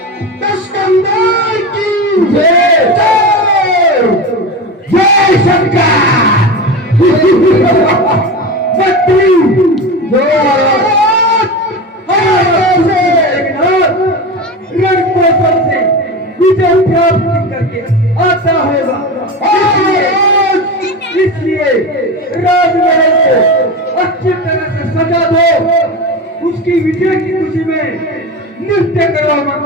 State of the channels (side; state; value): both; normal; correlation 0.25